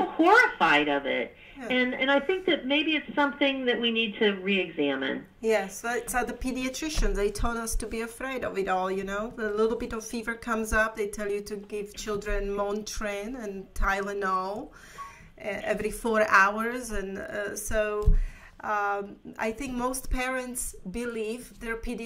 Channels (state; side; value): identical; both; correlation 1.00